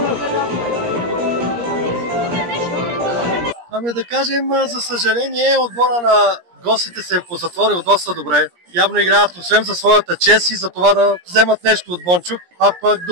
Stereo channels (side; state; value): left; late; 17 ms